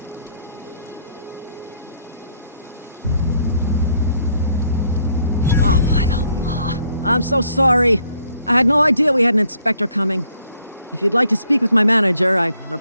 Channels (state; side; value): inverted; both; correlation -0.67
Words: Oh, by the law. I'm so sorry. I had no idea we had an inspector coming. If you'd like to speak with my manager, I